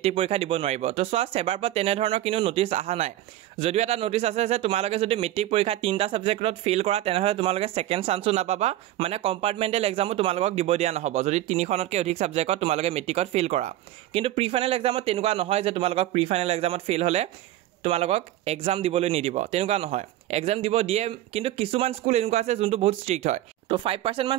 পৰীক্ষা দিব নোৱাৰিব তো সোৱা সেবাৰ পৰা তেনে ধৰণৰ কিনো নোটিস আহা নাই যদিও এটা নোটিস আছে যে তোমালোকে যদি মেট্ৰিক পৰীক্ষা তিনটা সাবজেক্টত ফেইল কৰা তেনেহলে তোমালোকে সেকেন্ড চান্সও নাপাবা মানে কম্পাৰ্টমেন্টেল এক্সামও তোমালোকক দিব দিয়া নহব যদি তিনিখনতকৈ অধিক সাবজেক্টত তোমালোকে মেট্ৰিকত ফেইল কৰা কিন্তু প্ৰি ফাইনাল এক্সামত তেনেকুৱা নহয় যে তোমালোকক প্ৰি ফাইনাল এক্সামত ফেইল হলে তোমালোকক এক্সাম দিবলৈ নিদিব তেনেকুৱা নহয় এক্সাম দিব দিয়ে কিন্তু কিছুমান স্কুল এনেকুৱা আছে যোনটো বহুত ষ্ট্ৰিক্ট হয় তো 5%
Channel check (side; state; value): left; quieter; 14.0 dB